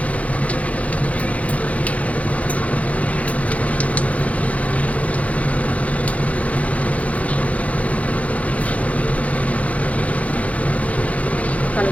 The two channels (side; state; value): right; late; 0.067 ms